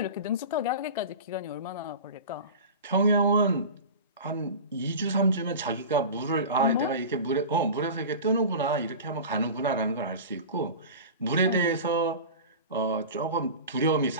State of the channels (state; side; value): inverted; both; correlation -0.32